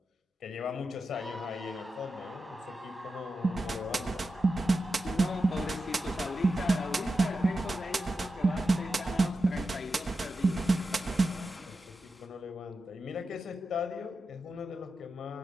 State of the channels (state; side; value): normal; both; correlation 0.90